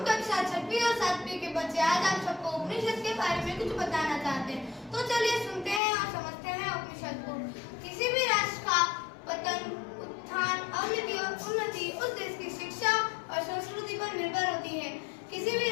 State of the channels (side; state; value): right; drops out; at 5.8 s